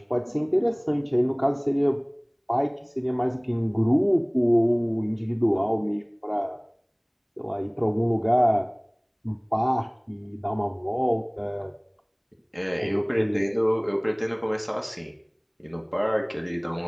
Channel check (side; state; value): both; identical; correlation 1.00